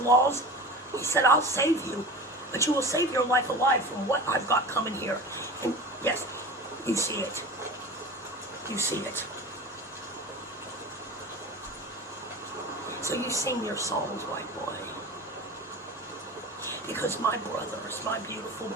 he said, I'll save you. But you will save your life alive from what I've got coming here. And yes, you see it. You see it. So you sing your songs, white boy. Because my brothers, my beautiful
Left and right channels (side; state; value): both; normal; correlation 0.33